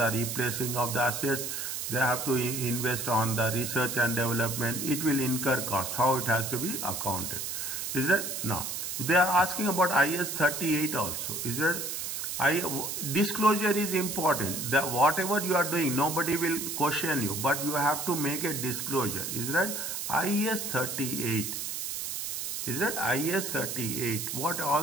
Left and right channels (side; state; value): right; noise; hiss, 4 dB below the sound